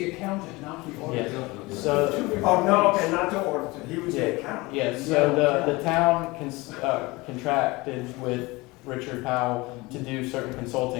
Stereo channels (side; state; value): right; quieter; 22.8 dB